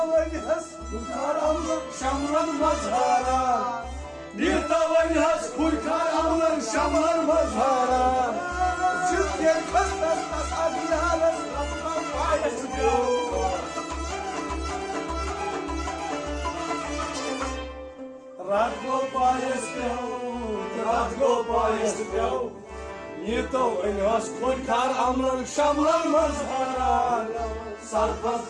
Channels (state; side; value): identical; both; correlation 1.00